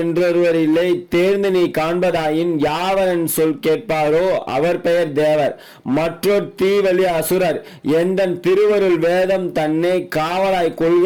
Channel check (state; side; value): identical; both; correlation 1.00